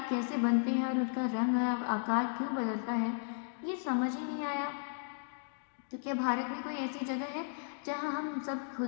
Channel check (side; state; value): right; silent; digital silence